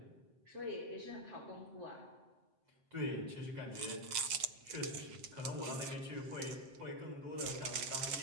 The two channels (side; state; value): left; late; 7.7 ms